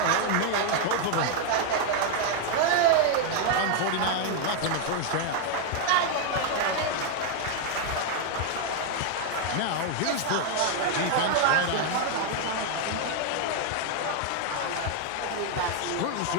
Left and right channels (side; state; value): both; different; correlation 0.01